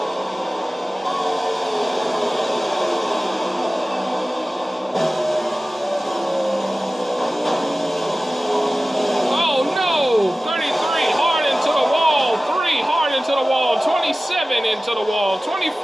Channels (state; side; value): normal; both; correlation 0.97